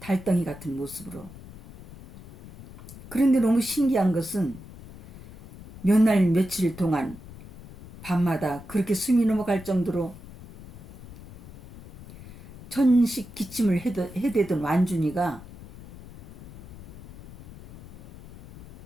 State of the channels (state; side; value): noise; left; rumble, 17 dB below the sound